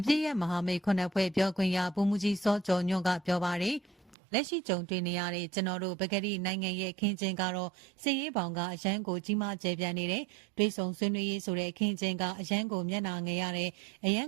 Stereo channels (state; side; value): drops out; left; at 4.2 s